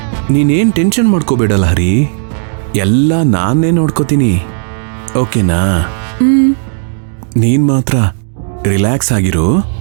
ನೀನೇನ್ ಟೆನ್ಷನ್ ಮಾಡ್ಕೋಬೇಡ ಲಹರಿ, ಎಲ್ಲ ನಾನೇ ನೋಡ್ಕೋತೀನಿ, ಓಕೆನಾ? ನೀನ್ ಮಾತ್ರ ರಿಲ್ಯಾಕ್ಸ್ ಆಗಿರು.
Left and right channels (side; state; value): left; silent; digital silence